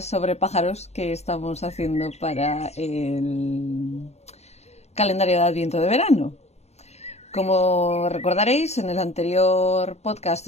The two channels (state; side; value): late; right; 0.31 ms